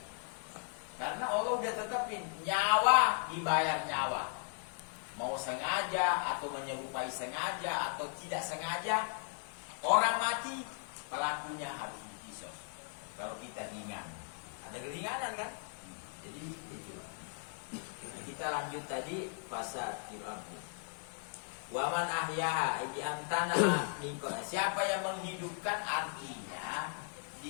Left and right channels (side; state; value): right; silent; 53 dB below the other